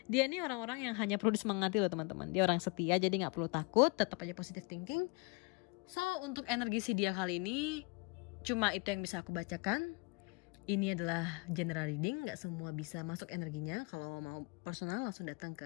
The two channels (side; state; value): right; quieter; 30.1 dB